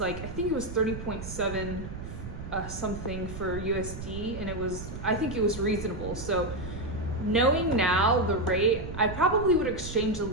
like, I think it was 30.7 something for USD, and I think it was reasonable. So knowing now the rate, I probably would exchange a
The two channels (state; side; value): noise; right; rumble, 9 dB below the sound